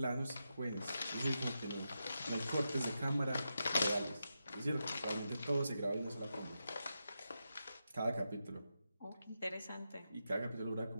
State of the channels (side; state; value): both; inverted; correlation -0.87